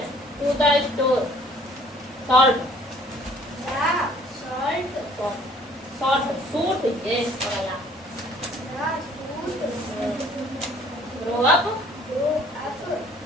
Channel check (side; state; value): both; normal; correlation 0.57